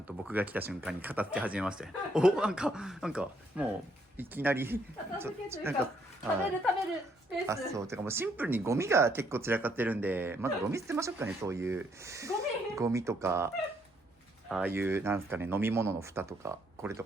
と僕が来た瞬間に片付け始めましたよ。なんかもういきなり片付けというか食べるスペース。そうてかもうシンプルにゴミが結構散らかってるんで、まずゴミ捨てましょうかね。そういうゴミとか、ああいうなんですかね、飲み物の蓋とかこれと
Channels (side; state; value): both; normal; correlation 0.71